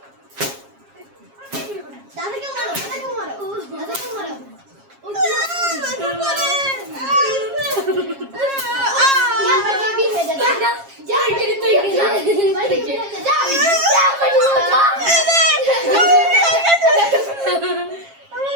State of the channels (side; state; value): left; late; 7.4 ms